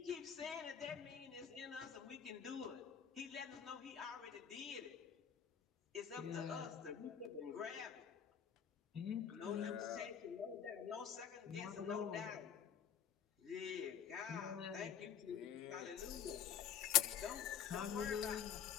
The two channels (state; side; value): quieter; right; 8.3 dB